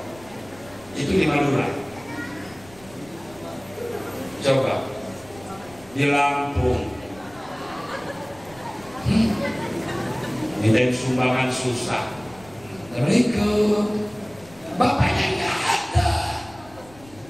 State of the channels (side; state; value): left; noise; rumble, 23 dB below the sound